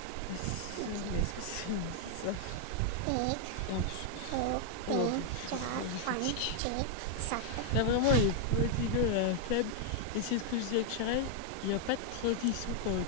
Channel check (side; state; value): both; different; correlation 0.00